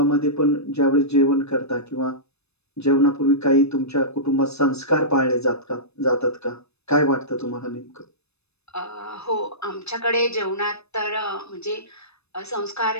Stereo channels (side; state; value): right; late; 0.79 ms